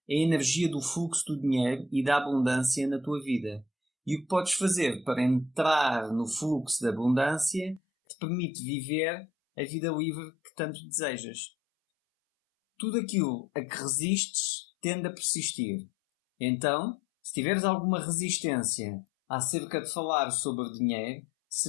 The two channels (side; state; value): right; drops out; at 7.8 s